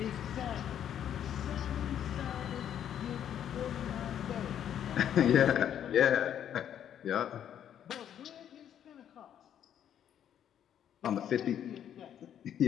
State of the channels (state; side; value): quieter; right; 9.8 dB